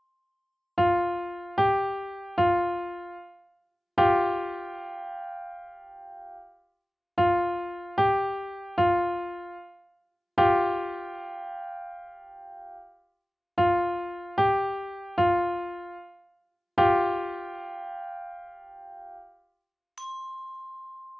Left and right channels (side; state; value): both; normal; correlation 0.97